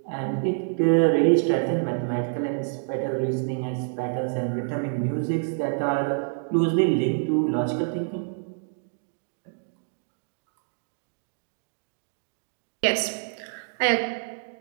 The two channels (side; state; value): left; silent; digital silence